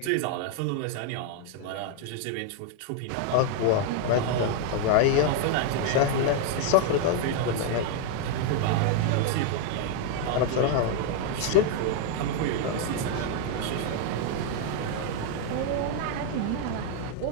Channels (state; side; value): different; both; correlation 0.00